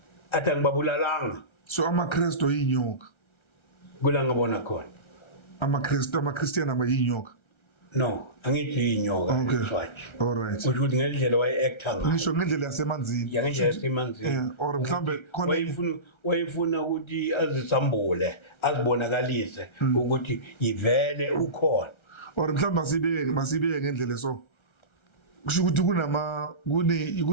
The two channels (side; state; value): right; late; 1.3 ms